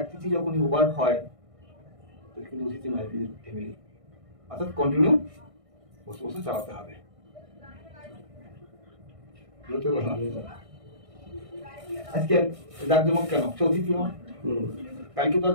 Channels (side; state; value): left; late; 1.6 ms